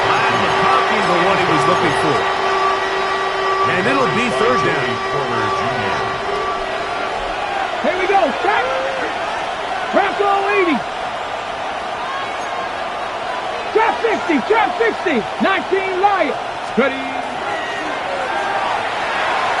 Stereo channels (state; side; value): identical; both; correlation 1.00